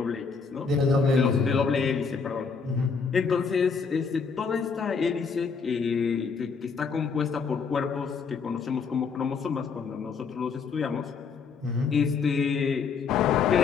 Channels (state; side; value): quieter; right; 5.4 dB